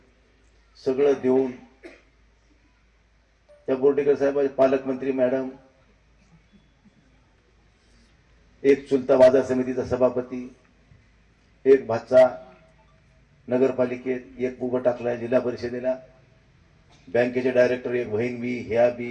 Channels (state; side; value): identical; both; correlation 1.00